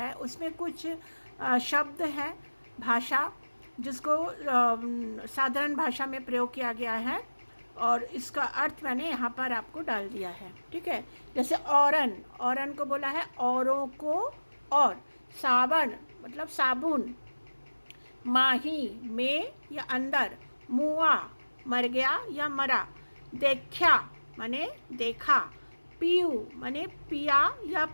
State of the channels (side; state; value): both; inverted; correlation -1.00